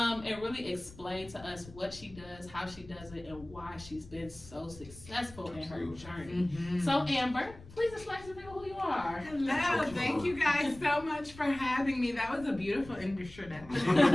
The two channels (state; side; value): noise; left; rumble, 19 dB below the sound